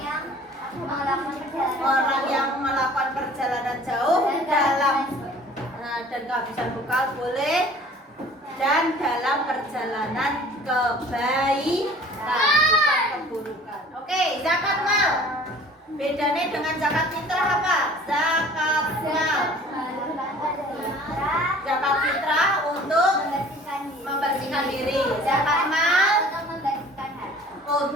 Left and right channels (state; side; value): normal; both; correlation 0.48